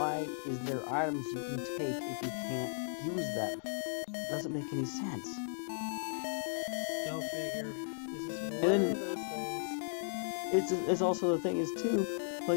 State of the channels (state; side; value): silent; right; 54 dB below the other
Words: is there items you can take if you can't use them? It doesn't make any sense. Go figure. This is one then, of those things. It's also the thing is too,